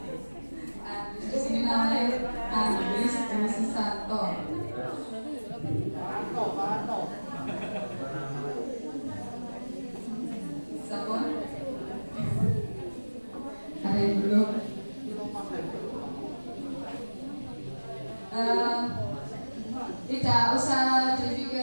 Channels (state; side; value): inverted; both; correlation -1.00